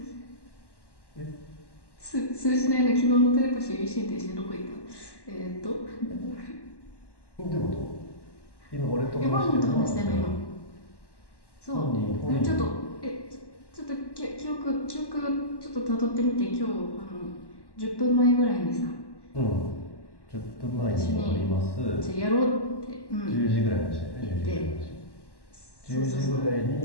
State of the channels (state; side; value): late; right; 1.1 ms